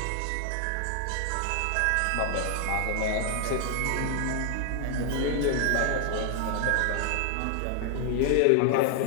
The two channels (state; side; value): different; both; correlation 0.00